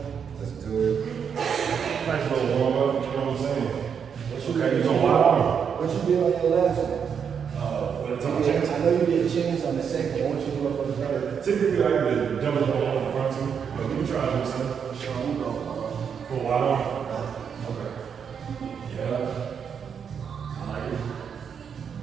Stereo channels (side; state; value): left; quieter; 7.1 dB